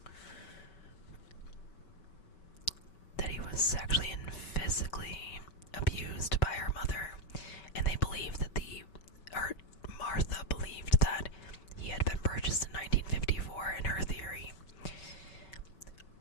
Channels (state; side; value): late; right; 5.2 ms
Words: That he was sexually and physically abused by her mother, and they believed that Martha believed that he had been purchased in 1954 in her theory.